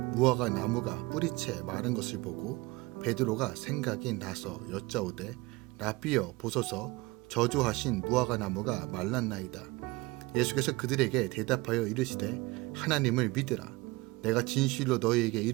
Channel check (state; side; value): quieter; left; 22.7 dB